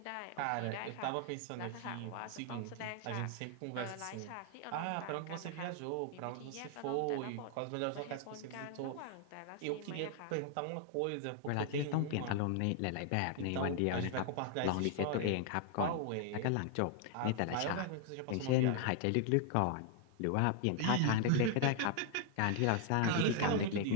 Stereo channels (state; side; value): different; both; correlation 0.00